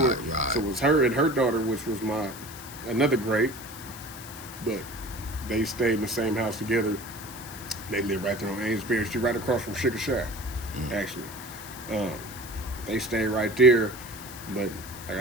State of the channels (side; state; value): left; noise; hiss, 14 dB below the sound